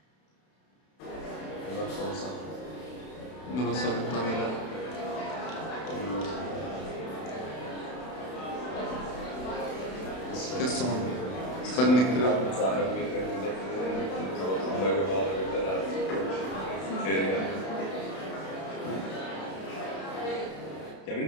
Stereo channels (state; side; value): late; right; 32 ms